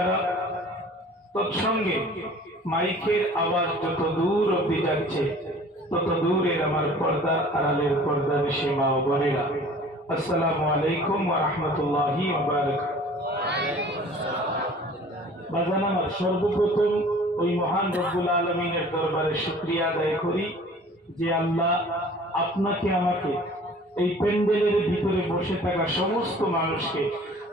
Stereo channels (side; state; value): both; normal; correlation 0.48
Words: তৎসঙ্গে মাইকের আওয়াজ যত দূর অব্দি যাচ্ছে তত দূরের আমার পর্দা আড়ালের পর্দা বেশি মা ও বোনেরা, আসসালামু আলাইকুম ওয়া রাহমাতুল্লাহি ওয়া বারাকাতুহু। বাজান আমার, সর্বপ্রথম ওই মহান রব্বুল আলামিনের দরবারে শুকরিয়া আদায় করি যে আল্লাহ আপনাকে আমাকে এই প্যান্ডেলের ভিতরে বসে থাকা সমস্ত মানুষকে